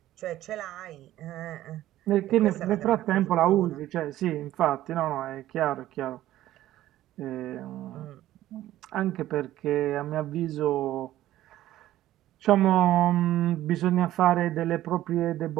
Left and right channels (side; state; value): left; quieter; 14.1 dB